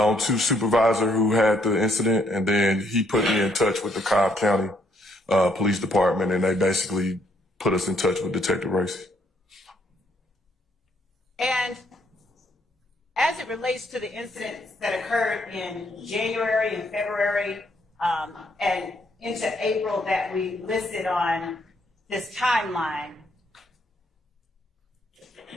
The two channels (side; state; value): both; normal; correlation 0.70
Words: 2 supervisor who had the incident, and then he put me in touch with the Cobb County Police Department, and they basically put us in touch with Detective Racy. And as it relates to the incidents that occurred in January and February and into April that we listed on this timeline,